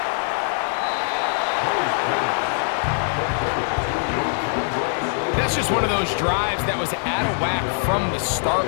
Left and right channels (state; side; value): silent; right; digital silence